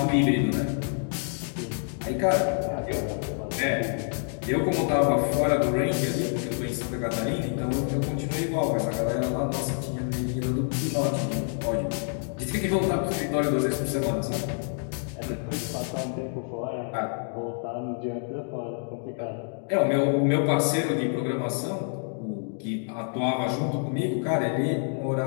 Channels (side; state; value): right; silent; 60 dB below the other